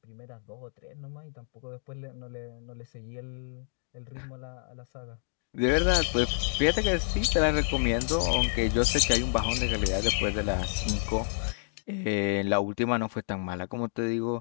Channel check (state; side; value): silent; right; digital silence